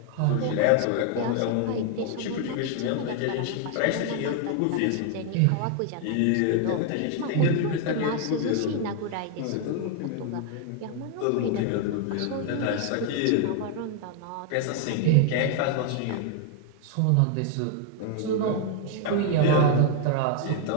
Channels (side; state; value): both; different; correlation 0.00